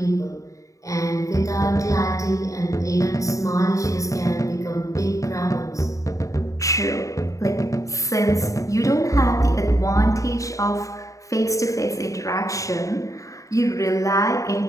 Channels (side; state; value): right; late; 0.16 ms